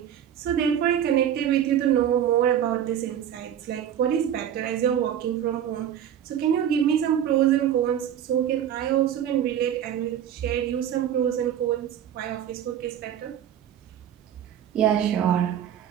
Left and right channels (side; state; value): left; quieter; 9.9 dB